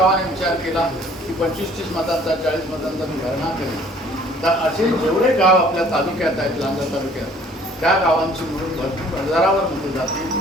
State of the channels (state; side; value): normal; both; correlation 0.55